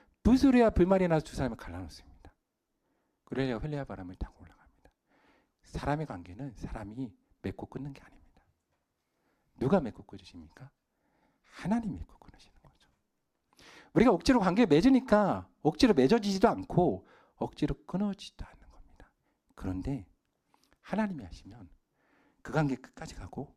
불소리와 불말이 나서 두 사람을 갈라놓습니다. 그래야 헬레아 바람을 타고 올라갑니다. 사람의 관계는 사람이 맺고 끊는 게 아닙니다. 누가 맺고 끊으십니까? 하나님이 맺고 끊으시는 거죠. 우리가 억지로 관계를 맺으니까 억지로 맺어지지도 않고 억지로 끊어지지도 않는 겁니다. 그런데 하나님이 하시면 그 관계 끝까지 가고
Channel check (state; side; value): identical; both; correlation 1.00